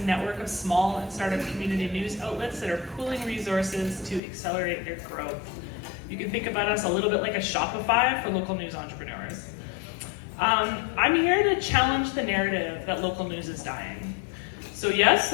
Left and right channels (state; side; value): drops out; right; at 4.2 s